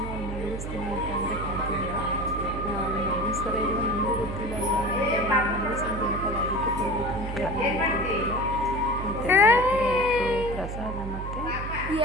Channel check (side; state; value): right; noise; hum, 6 dB below the sound